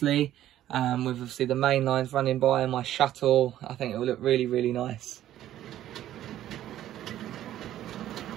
With obviously the main lines running by and my shuttle, I think it will look really nice.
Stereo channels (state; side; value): quieter; left; 12.6 dB